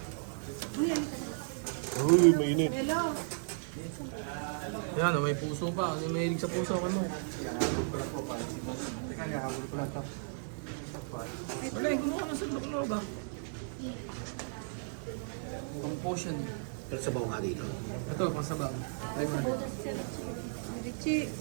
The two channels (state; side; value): silent; left; 55 dB below the other